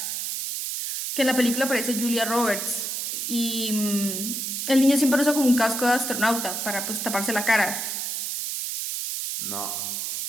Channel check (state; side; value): noise; right; hiss, 3 dB below the sound